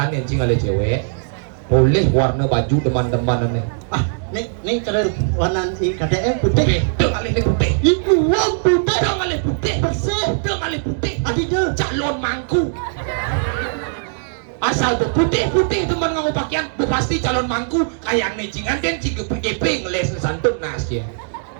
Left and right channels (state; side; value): silent; left; digital silence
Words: nencing ada cewek. Boleh warna baju teman-teman nih. Ah, nih cara warna KDM putih. Deng alih nih putih. Itu warna putih. Deng alih putih. Bersih. Deng alih putih. Adi dah. Calon mangku. Asal putih teman ngau pakaian, pasti calon mangku kayak necingan dan ciga PGP ngeles santun nas ya.